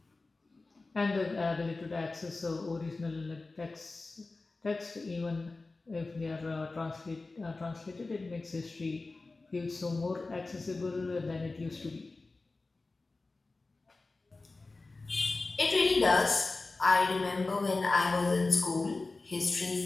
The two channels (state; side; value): quieter; right; 3.5 dB